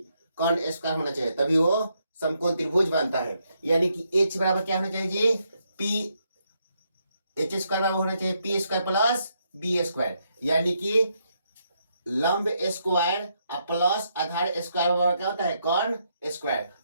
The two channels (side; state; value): both; inverted; correlation -0.77